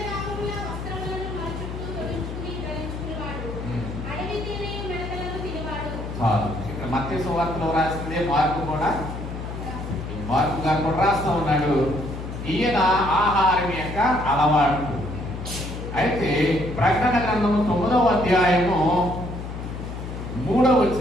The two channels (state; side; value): noise; left; hum, 7 dB below the sound